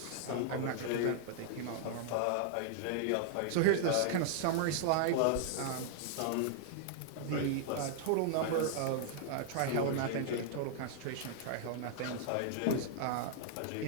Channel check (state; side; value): different; both; correlation -0.01